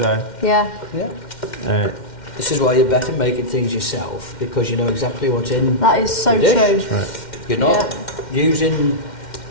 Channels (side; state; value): right; late; 2.1 ms